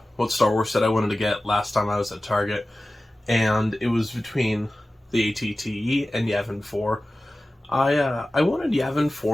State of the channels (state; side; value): normal; both; correlation 0.96